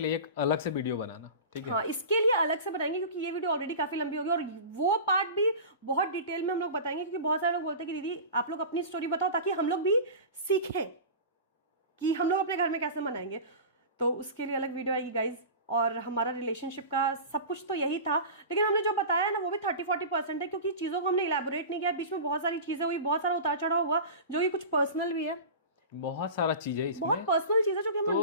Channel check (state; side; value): inverted; both; correlation -0.32